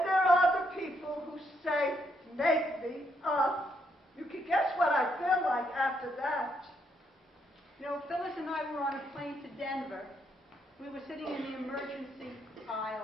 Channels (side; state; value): both; normal; correlation 0.75